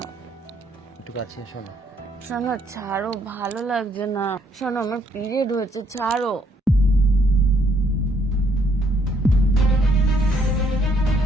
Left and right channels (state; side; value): normal; both; correlation 0.69